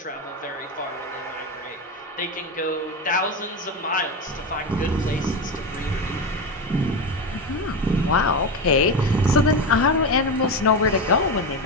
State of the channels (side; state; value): both; normal; correlation 0.18